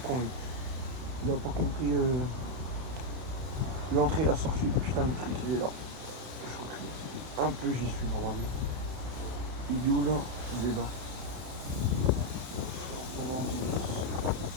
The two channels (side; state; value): left; late; 31 ms